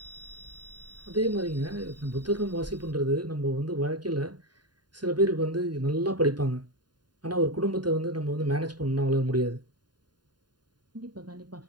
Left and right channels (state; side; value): late; left; 0.70 ms